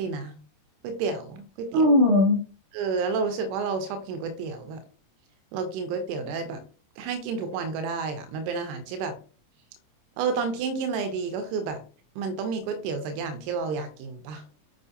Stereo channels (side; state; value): left; late; 26 ms